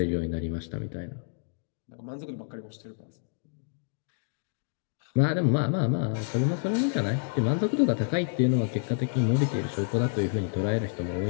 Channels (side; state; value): right; silent; digital silence